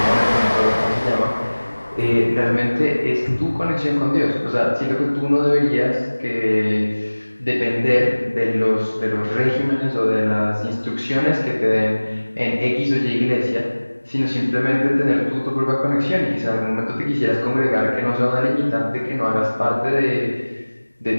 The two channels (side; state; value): both; inverted; correlation -1.00